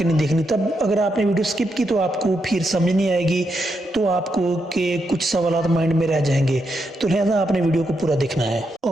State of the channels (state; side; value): normal; both; correlation 0.82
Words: नहीं देखनी, तब अगर आपने वीडियो स्किप की तो आपको फिर समझ नहीं आएगी, तो आपको के कुछ सवाल माइंड में रह जाएंगे। तो लिहाजा आपने वीडियो को पूरा देखना है।